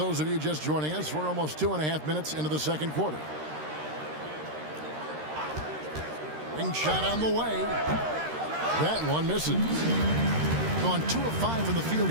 of you just joining us, we're almost 2.5 minutes into the second quarter. Ring shot on the way. That one misses. Gone 2 of 5 from the field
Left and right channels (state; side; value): late; left; 13 ms